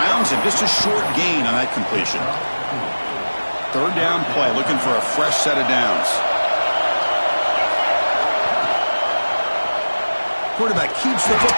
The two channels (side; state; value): both; inverted; correlation -1.00